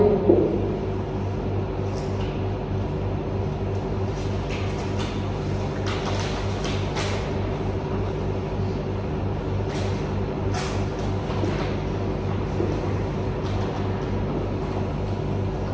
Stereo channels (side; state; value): both; identical; correlation 1.00